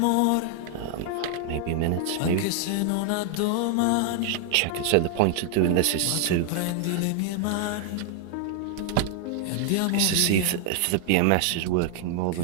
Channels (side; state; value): both; different; correlation 0.00